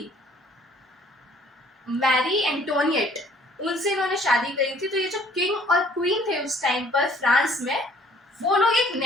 मैरी एंटोनिएट, उनसे इन्होंने शादी करी थी। तो ये जो किंग और क्वीन थे उस टाइम पर फ्रांस में, वो लोग एक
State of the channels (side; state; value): both; normal; correlation 0.59